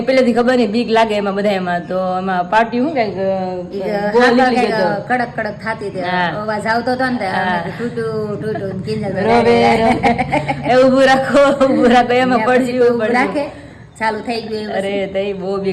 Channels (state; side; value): identical; both; correlation 1.00